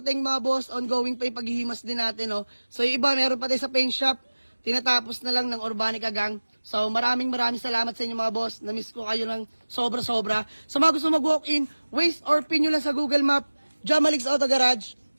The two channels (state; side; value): inverted; both; correlation -1.00